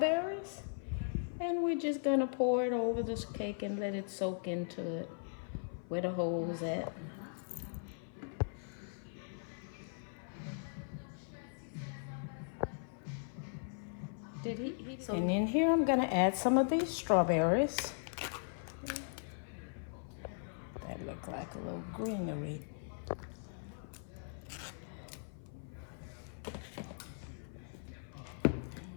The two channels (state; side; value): silent; right; 52 dB below the other